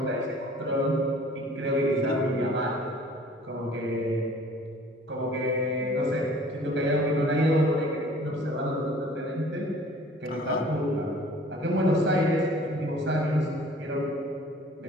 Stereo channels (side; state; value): both; normal; correlation 0.50